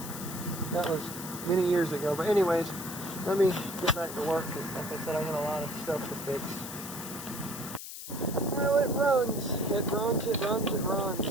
That was many years ago. But anyways, let me get back to work, because like I said, I got a lot of stuff to fix. Well, it runs. It runs, it runs, it runs.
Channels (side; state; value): left; noise; hiss, 10 dB below the sound